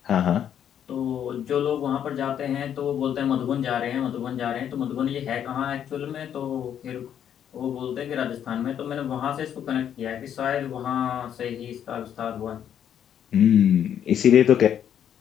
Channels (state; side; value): quieter; right; 9.4 dB